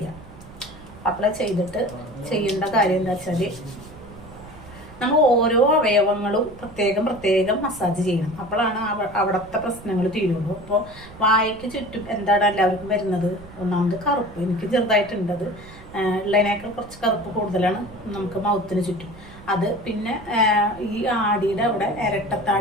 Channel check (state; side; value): noise; right; rumble, 19 dB below the sound